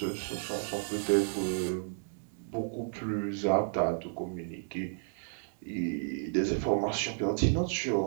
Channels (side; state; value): left; silent; digital silence